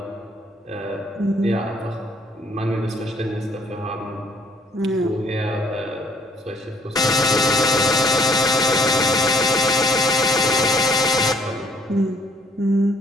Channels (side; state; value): both; normal; correlation 0.61